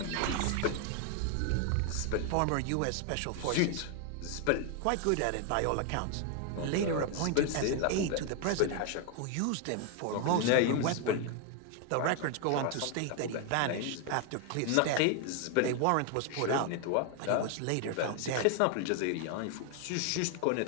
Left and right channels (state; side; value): different; both; correlation 0.00